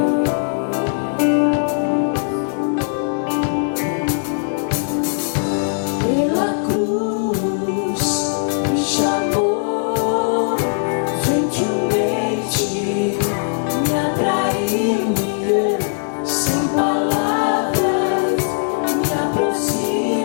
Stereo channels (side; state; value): right; silent; 61 dB below the other